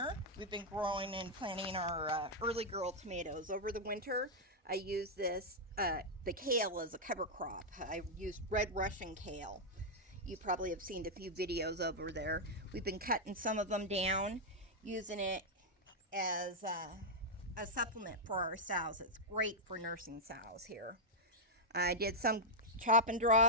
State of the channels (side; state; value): both; normal; correlation -0.04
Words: We've been growing and planting our early girl tomatoes. Over the winter, I use this, the kale as a cover crop. I used red Russian kale. You probably have seen a few videos over there. We've been cutting some of them down, using it as a supplement for our sows. It's great for nursing sows here. I did some chop and